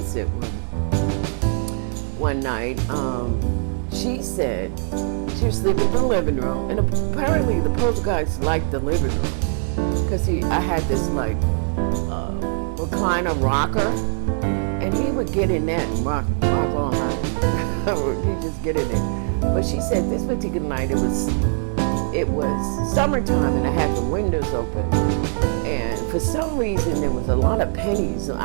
one night. She said she was sleeping in the living room, and apparently the poltergeist liked the living room because I had this like recliner rocker, and he would get in that and rock all night. He'd just get in there. But she said this particular night it was summertime and I had the windows open, and for some reason there was a lot of pennies.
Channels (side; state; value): left; silent; 59 dB below the other